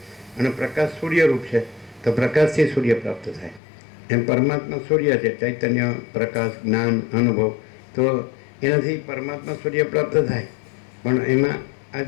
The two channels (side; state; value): right; drops out; at 3.6 s